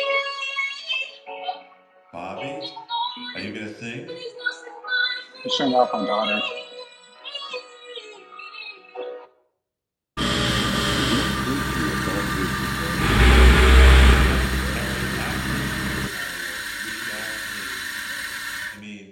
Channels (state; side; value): identical; both; correlation 1.00